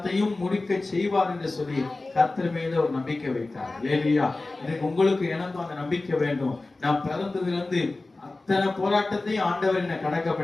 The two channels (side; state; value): right; quieter; 3.2 dB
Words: முடிக்க செய்வார் என்று சொல்லி கர்த்தர் மீது ஒரு நம்பிக்கை வைத்தார். அல்லேலூயா. எனக்கு உங்களுக்கு எனக்கும் அந்த நம்பிக்கை வேண்டும். நான் பிறந்ததுல இருந்து அத்தனை போராட்டத்தையும் ஆண்டவர் என்ன கடக்க